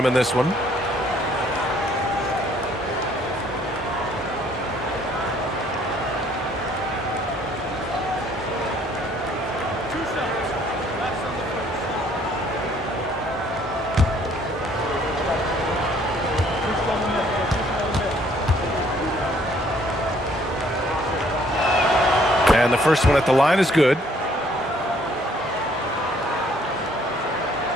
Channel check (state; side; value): normal; both; correlation 0.62